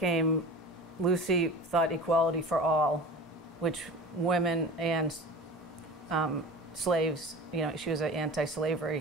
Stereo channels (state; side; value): normal; both; correlation 0.35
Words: Lucy thought equality for all, which women and slaves, you know, she was an